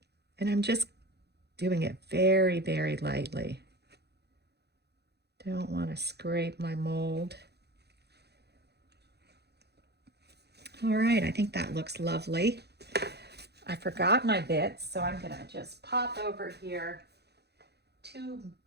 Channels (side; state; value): left; late; 0.48 ms